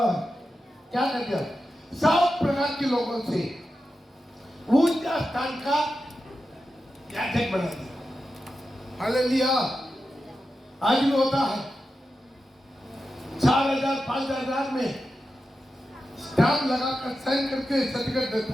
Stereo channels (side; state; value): both; normal; correlation 0.91